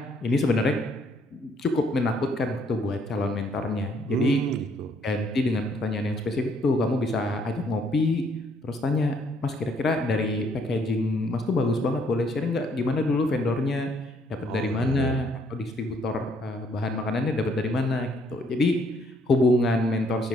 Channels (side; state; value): both; normal; correlation 0.67